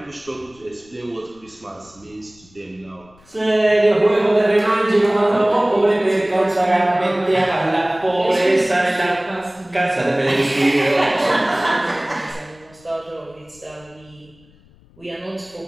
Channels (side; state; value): left; noise; rumble, 28 dB below the sound